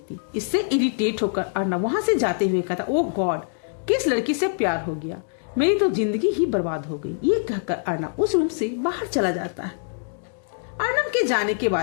इससे इरिटेट होकर अर्णव वहां से जाते हुए कहता, ओह गॉड, किस लड़की से प्यार हो गया, मेरी तो जिंदगी ही बर्बाद हो गई। ये कहकर अर्णव उस रूम से बाहर चला जाता है। अर्णव के जाने के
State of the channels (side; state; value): right; silent; digital silence